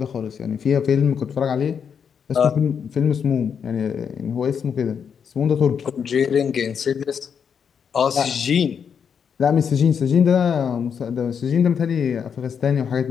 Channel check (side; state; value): right; quieter; 7.1 dB